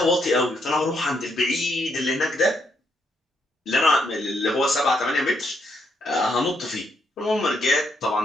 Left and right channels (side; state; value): both; normal; correlation 0.76